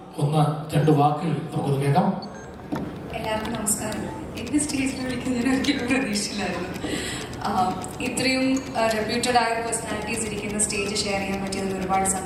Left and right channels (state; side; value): identical; both; correlation 1.00